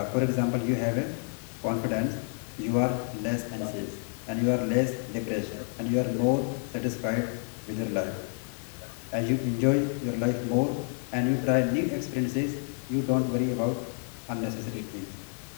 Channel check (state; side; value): silent; right; 58 dB below the other